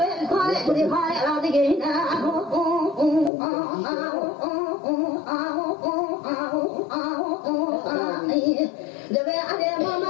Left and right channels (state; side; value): drops out; right; at 3.3 s